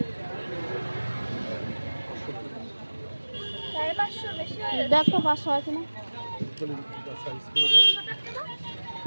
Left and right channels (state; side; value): inverted; both; correlation -1.00